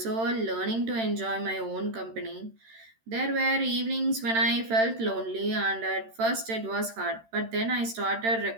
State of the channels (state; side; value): late; left; 13 ms